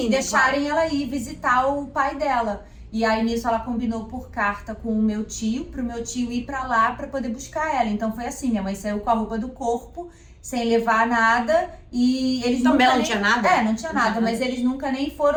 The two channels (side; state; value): both; identical; correlation 1.00